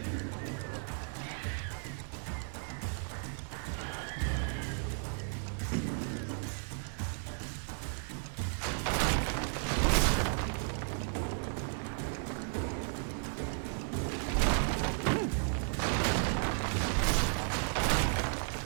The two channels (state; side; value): silent; left; 55 dB below the other